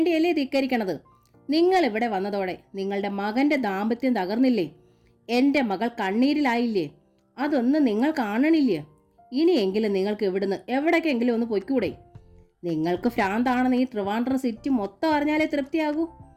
ധിക്കരിക്കണത്? നിങ്ങൾ ഇവിടെ വന്നതോടെ നിങ്ങളുടെ മകൻ്റെ ദാമ്പത്യം തകർന്നില്ലേ? എൻ്റെ മകൾ കണ്ണീരിലായില്ലേ? അതൊന്നും നിങ്ങൾ കാണണില്ലേ? ഇനിയെങ്കിലും നിങ്ങൾക്ക് ഇവിടുന്ന് എവിടേക്കെങ്കിലും ഒന്ന് പൊയ്ക്കൂടെ? നിങ്ങൾക്ക് ഭ്രാന്താണെന്ന് ഈ ട്രിവാൻഡ്രം സിറ്റി മൊത്തം അറിഞ്ഞാലേ തൃപ്തിയാകൂ.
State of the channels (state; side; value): identical; both; correlation 1.00